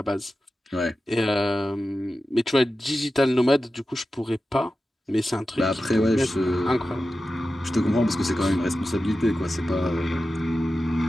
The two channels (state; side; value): normal; both; correlation 0.93